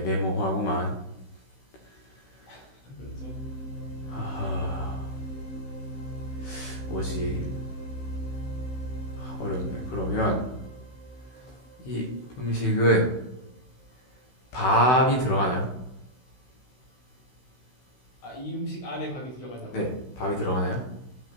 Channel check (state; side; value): late; right; 16 ms